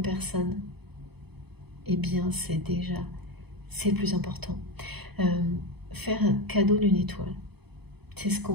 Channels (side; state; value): left; late; 0.98 ms